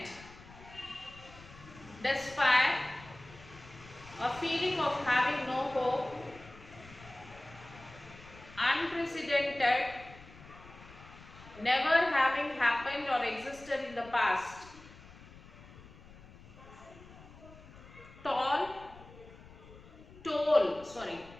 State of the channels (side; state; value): left; noise; rumble, 19 dB below the sound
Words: despair, a feeling of having no hope, unprecedented, never having happened or existed in the past, toll,